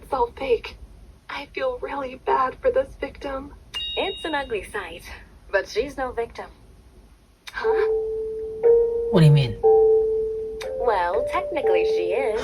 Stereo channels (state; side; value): identical; both; correlation 1.00